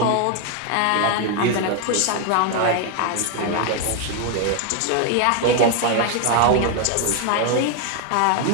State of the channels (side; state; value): both; different; correlation 0.00